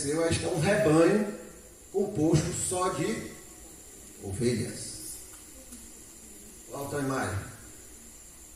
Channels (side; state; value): both; identical; correlation 1.00